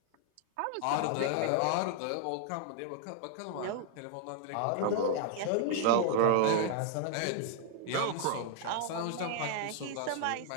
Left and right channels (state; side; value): different; both; correlation 0.00